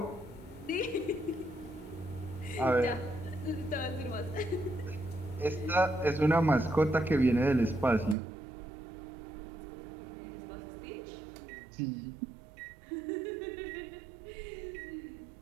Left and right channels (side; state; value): left; drops out; at 8.2 s